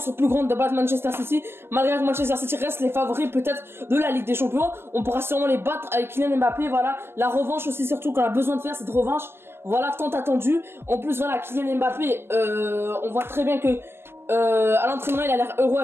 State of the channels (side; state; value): left; late; 0.12 ms